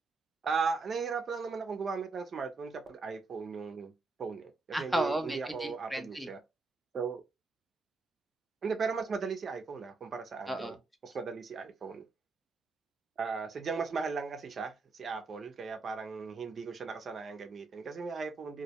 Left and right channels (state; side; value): quieter; left; 3.9 dB